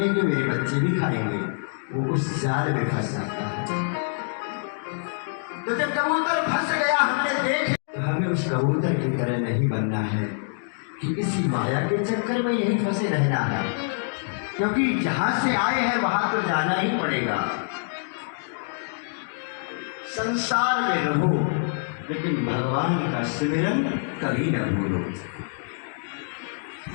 मेरे बच्चे भी खाएंगे, वो उस जाल में फंस जाता है। तो जब कबूतर फंस गया हमने देखे, तो हमें उस कबूतर की तरह नहीं बनना है कि इसी माया के चक्कर में यही फंसे रहना है, क्योंकि जहां से आए हैं वहां तो जाना ही पड़ेगा। संसार में रहो लेकिन भगवान का सिमरन कभी न भूलो।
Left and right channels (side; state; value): right; silent; digital silence